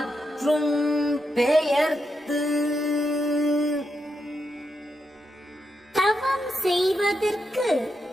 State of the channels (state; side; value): normal; both; correlation 0.84